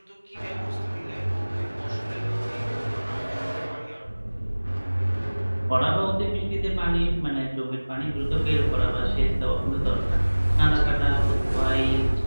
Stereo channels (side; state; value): both; inverted; correlation -1.00